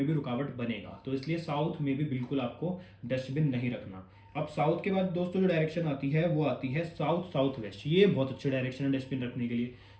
भी रुकावट बनेगा। तो इसलिए साउथ में भी बिल्कुल आपको डस्टबिन नहीं रखना। अब साउथ के बाद दोस्तों जो डायरेक्शन आती है वो आती है साउथ साउथ वेस्ट। ये बहुत अच्छी डायरेक्शन है डस्टबिन रखने के लिए,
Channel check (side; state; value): both; identical; correlation 1.00